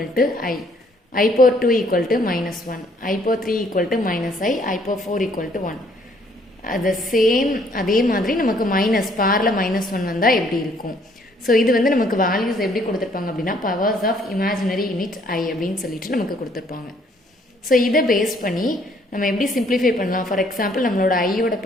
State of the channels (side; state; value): both; normal; correlation 0.64